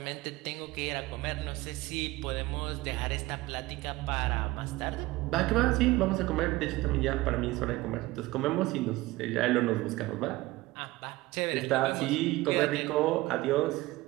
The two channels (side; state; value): left; quieter; 19.4 dB